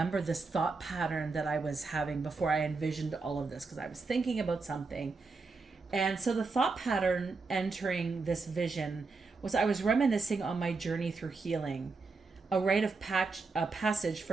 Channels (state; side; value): quieter; left; 4.1 dB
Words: this thought pattern that I was having before I envisioned all of this, because I was thinking about something. And so the thought pattern entering this vision was I was reminiscing on my journey through healing, a rite of passage